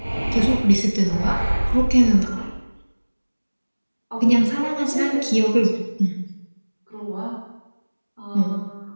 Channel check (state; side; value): inverted; both; correlation -1.00